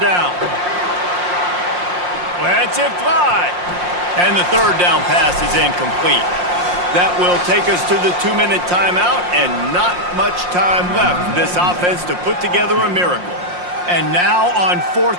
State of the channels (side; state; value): left; late; 5.6 ms